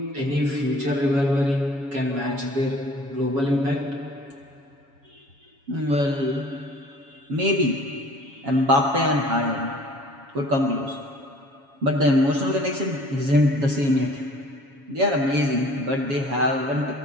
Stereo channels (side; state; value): left; late; 7.2 ms